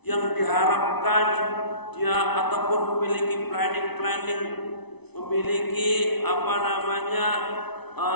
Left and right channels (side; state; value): right; late; 0.99 ms